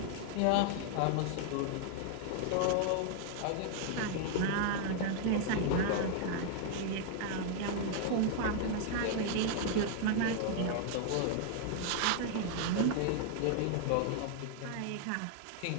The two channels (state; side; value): different; both; correlation 0.00